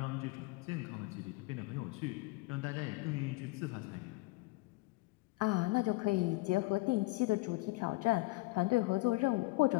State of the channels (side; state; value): right; quieter; 22.2 dB